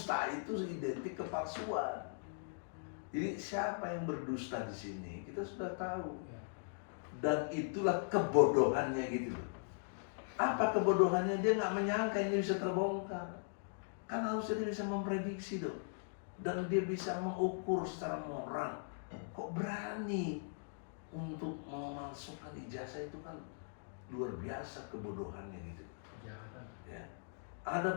itu identik kepalsuan. Jadi siapa yang berdusta di sini kita sudah tahu. Dan itulah kebodohannya gitu loh. Apa kebodohannya? Dia nggak menyangka ini bisa terbongkar. Kan harusnya dia bisa memprediksi dong. Dan dia bisa mengukur secara moral. Kok berani untuk memalsukan ijazah? Itu kan luar biasa kebodohannya gitu. Kejahatan. Ya.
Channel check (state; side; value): silent; right; digital silence